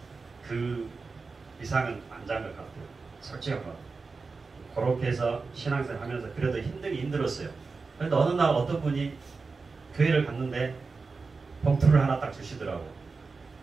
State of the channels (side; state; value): left; quieter; 4.3 dB